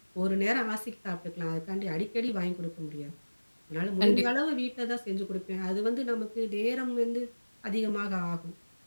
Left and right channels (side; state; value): both; inverted; correlation -1.00